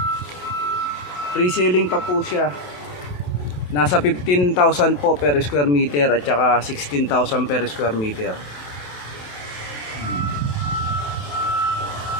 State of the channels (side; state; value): right; late; 28 ms